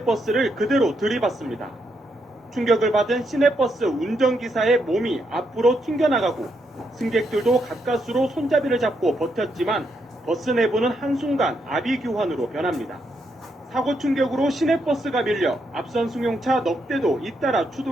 그대로 들이받습니다. 충격을 받은 시내버스 운전기사의 몸이 앞으로 튕겨나가고 승객들도 가까스로 손잡이를 잡고 버텼지만 버스 내부는 한순간 아비규환으로 변합니다. 사고 충격으로 시내버스가 밀려 앞선 승용차 넉 대도 잇따라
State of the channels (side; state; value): both; normal; correlation 0.79